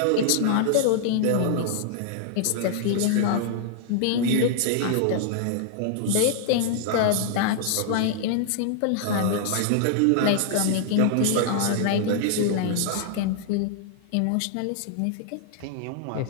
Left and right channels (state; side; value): different; both; correlation -0.01